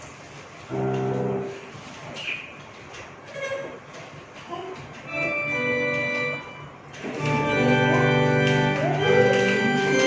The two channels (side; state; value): both; identical; correlation 1.00